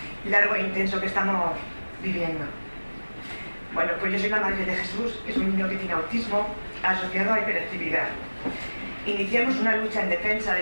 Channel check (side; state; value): both; inverted; correlation -1.00